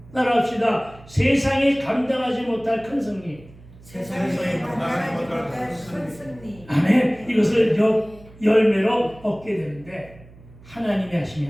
따라합시다. 세상이 감당하지 못할 큰 승리. 세상에 감당하지 못할 큰 승리. 아멘. 이것을 열매로 얻게 되는데 하나님이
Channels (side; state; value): right; noise; hum, 22 dB below the sound